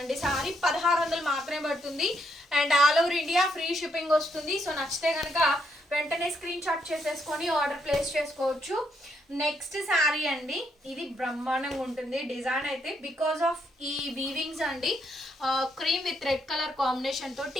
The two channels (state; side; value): normal; both; correlation 0.76